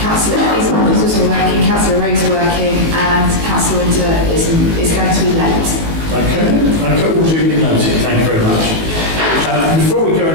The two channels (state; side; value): late; left; 19 ms